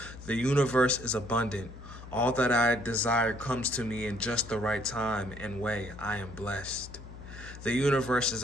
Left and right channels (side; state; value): left; noise; hum, 14 dB below the sound